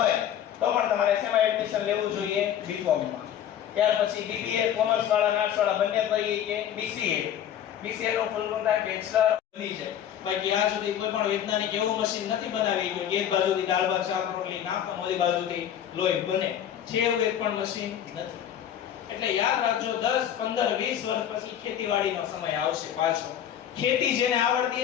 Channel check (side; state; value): right; quieter; 10.0 dB